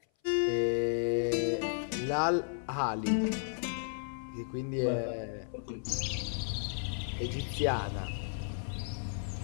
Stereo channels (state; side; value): silent; right; 55 dB below the other